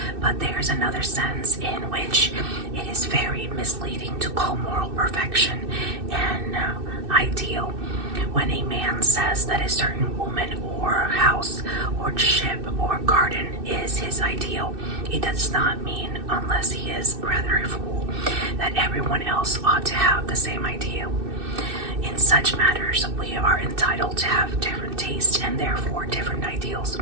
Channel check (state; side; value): late; left; 2.6 ms